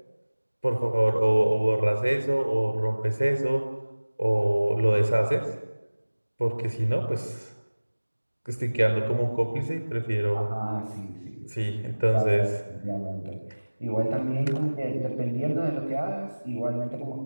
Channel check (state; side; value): inverted; both; correlation -1.00